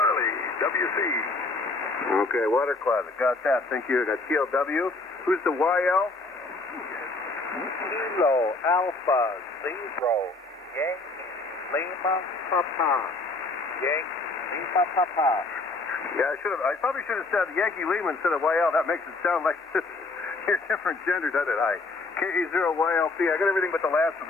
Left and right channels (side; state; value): right; quieter; 3.4 dB